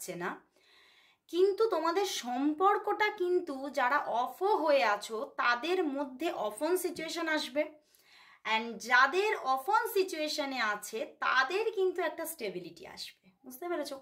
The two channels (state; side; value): identical; both; correlation 1.00